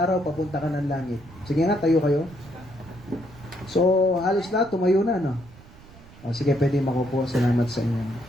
papunta ka ng langit. Sige nga, tayo kayo. So, halos lahat, tumayo na, no? O, sige, pwede makupo. Salamat sa inyo.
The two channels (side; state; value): right; noise; rumble, 22 dB below the sound